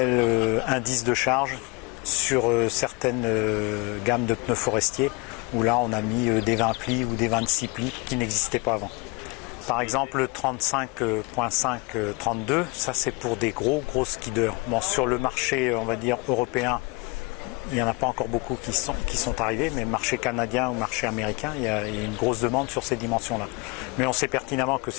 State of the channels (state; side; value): quieter; right; 27.5 dB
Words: indices de charge sur certaines gammes de pneus forestiers, où là on a mis des 20 plis ou des 26 plis qui n'existaient pas avant. Par exemple le 35.5-32, ça c'est pour des gros skiders. Bon, sur le marché on va dire européen, il n'y en a pas encore beaucoup qui sont arrivés, mais marché canadien ou marché américain, il y a une grosse demande sur ces dimensions-là. Mais on sait pertinemment que